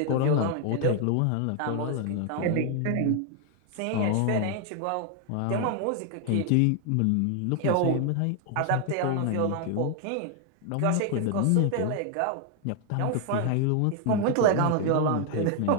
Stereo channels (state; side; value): different; both; correlation 0.00